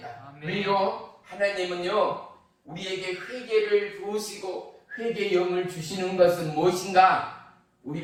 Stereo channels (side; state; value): both; identical; correlation 1.00